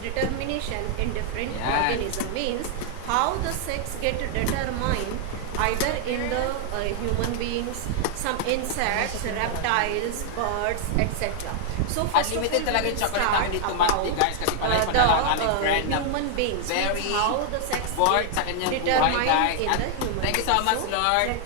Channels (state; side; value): different; both; correlation 0.00